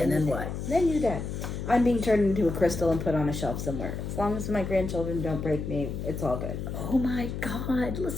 and then what? Then you're dead. I'm being turned into a crystal and put on a shelf somewhere. As long as my grandchildren don't break me, it's all good. Oh my God.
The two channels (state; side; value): noise; left; hum, 5 dB below the sound